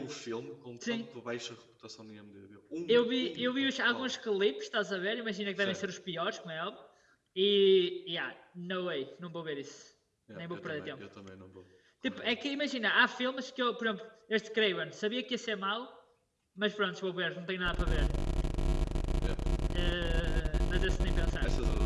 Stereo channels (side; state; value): both; identical; correlation 1.00